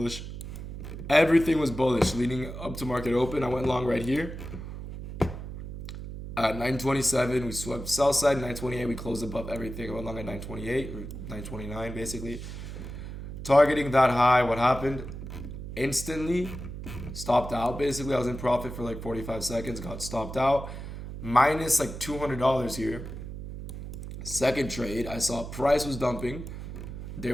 Everything was bullish leading up to market open. I went long right here. At 927, we swept sell side. 928, we closed above everything. I went long at 928 or 929, basically. Targeting that high, what happened? Instantly stopped out. Basically, I was in profit for like 45 seconds. Got stopped out. Minus like $200 here. Second trade, I saw price was dumping. There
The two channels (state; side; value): noise; right; hum, 9 dB below the sound